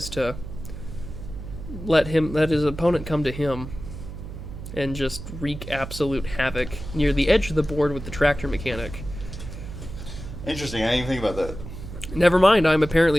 to let his opponent come to him and just wreak absolute havoc near the edge of the board with the tractor mechanic. Interesting, I didn't even think about that. Never mind, I'm apparently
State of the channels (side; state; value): right; noise; hum, 10 dB below the sound